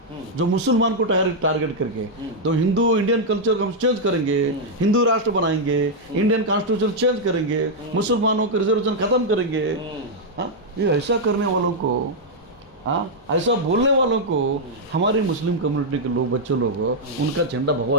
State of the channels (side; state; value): both; normal; correlation -0.03